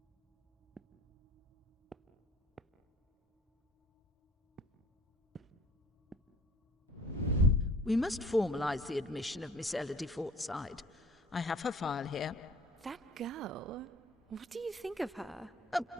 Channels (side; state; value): both; normal; correlation 0.52